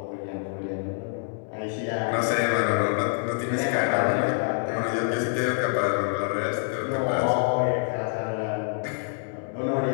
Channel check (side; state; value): right; silent; digital silence